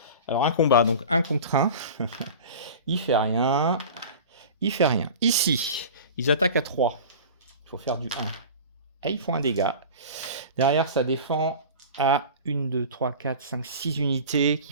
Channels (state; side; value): inverted; both; correlation -0.35